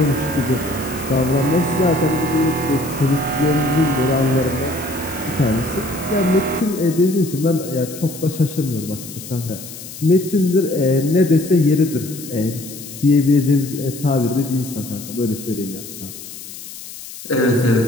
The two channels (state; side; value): noise; left; hiss, 13 dB below the sound